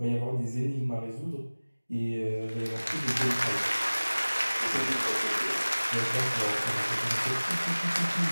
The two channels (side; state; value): both; inverted; correlation -1.00